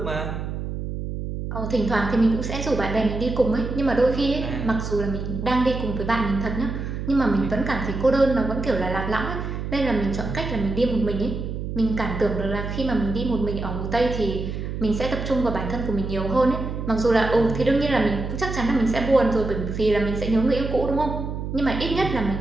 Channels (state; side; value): noise; right; hum, 5 dB below the sound